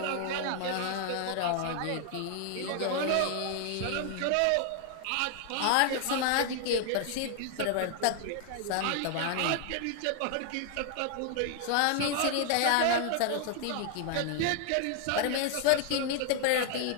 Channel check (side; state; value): both; different; correlation 0.00